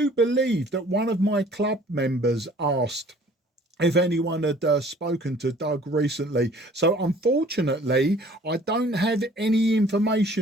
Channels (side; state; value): both; normal; correlation 0.53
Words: believe that one of my club members asked if anyone had spoken to Doug recently. So unfortunately, I don't have any